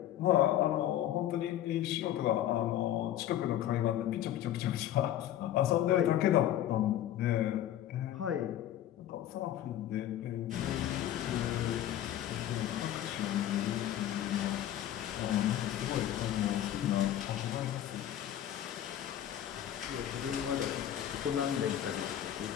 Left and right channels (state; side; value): quieter; right; 11.9 dB